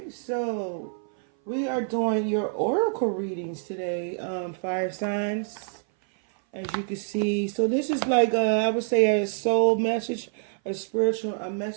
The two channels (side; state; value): left; silent; 57 dB below the other